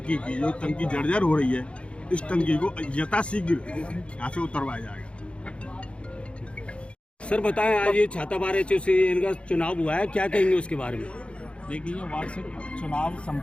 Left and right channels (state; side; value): late; right; 0.059 ms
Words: की, जो टंकी जर्जर हो रही है, इस टंकी को यथाशीघ्र यहाँ से उतरवाया जाएगा। सर बताएं, आज ये छाता बार एसोसिएशन का चुनाव हुआ है, क्या कहेंगे उसके बारे में? देखिए, वार्षिक चुनाव